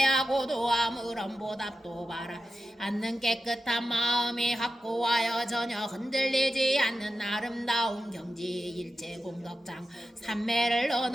도아무런 보답도 바라 않는 깨끗한 마음이 확고하여 전혀 흔들리지 않는 아름다운 경지 일체 공덕장 삼매를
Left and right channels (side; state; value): both; normal; correlation 0.91